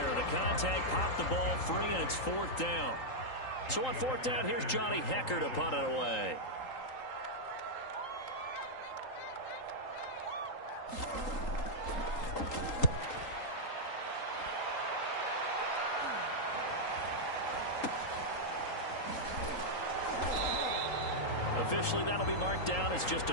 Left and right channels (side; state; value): right; late; 3.8 ms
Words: The contact popped the ball free, and it's 4th down. So on 4th down, here's Johnny Hecker to punt it away. Officially, that'll be marked down as just a